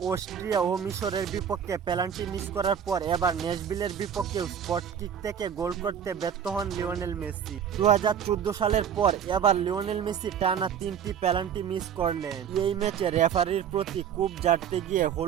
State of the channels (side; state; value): left; quieter; 8.3 dB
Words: অস্ট্রিয়া ও মিশরের বিপক্ষে পেনাল্টি মিস করার পর এবার ন্যাশভিলের বিপক্ষেও স্পট কিক থেকে গোল করতে ব্যর্থ হন লিওনেল মেসি। 2014 সালের পর এবার লিওনেল মেসি টানা 3টি পেনাল্টি মিস করলেন। এই ম্যাচে রেফারির প্রতি কূপ ঝাড়তে গিয়ে